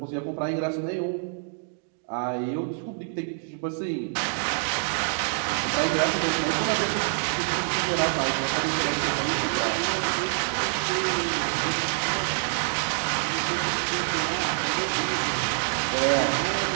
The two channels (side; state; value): left; silent; 60 dB below the other